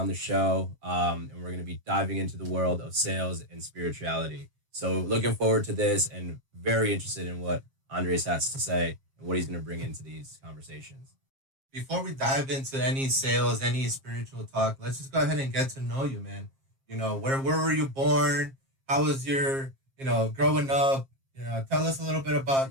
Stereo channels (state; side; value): late; left; 7.5 ms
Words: the show, and we're going to be diving into the world of sales and spirituality. So looking forward to this and very interested in what Andres has to say and what he's going to bring into these conversations. Before we dive into any sales, any spiritual talk, let's just go ahead and get to know you, man. You know, where were you born? How was your, growing up? Tell us a little bit